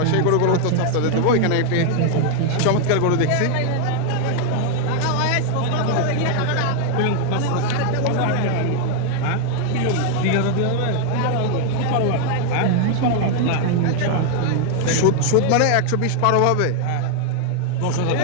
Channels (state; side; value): different; both; correlation 0.00